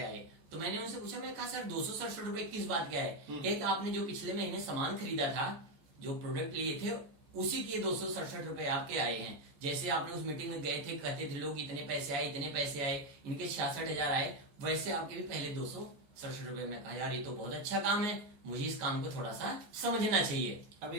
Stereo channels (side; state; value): left; late; 14 ms